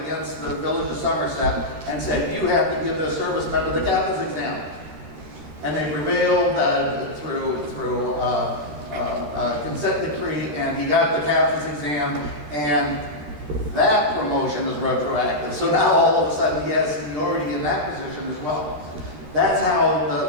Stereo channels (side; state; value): left; late; 13 ms